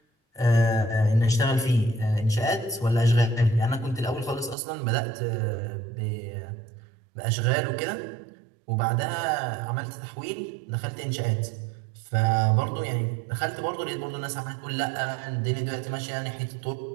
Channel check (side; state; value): left; drops out; at 4.5 s